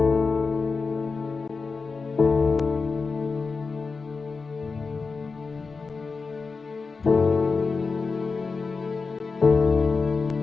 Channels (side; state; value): right; quieter; 4.5 dB